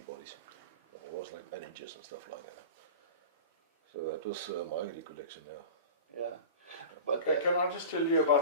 bodies. It was like bandages and stuff like that. So that was my recollection now. Yeah. But Okay, can I just tell you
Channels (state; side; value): inverted; both; correlation -0.35